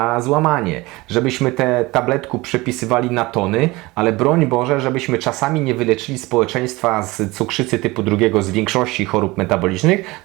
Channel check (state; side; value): quieter; left; 21.7 dB